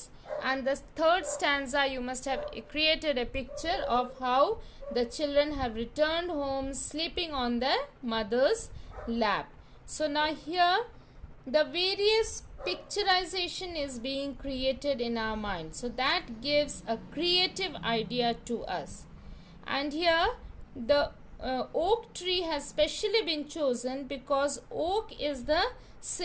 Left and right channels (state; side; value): identical; both; correlation 1.00